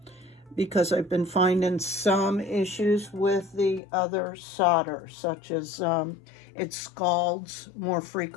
because I've been finding some issues with the other solder, such as it scalds more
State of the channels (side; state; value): right; drops out; at 3.8 s